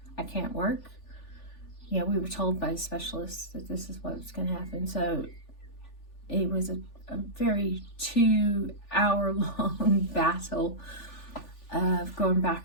I can't work. We were told by specialists that this is what's going to happen. So it was a very 2-hour-long battle of going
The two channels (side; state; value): right; late; 3.4 ms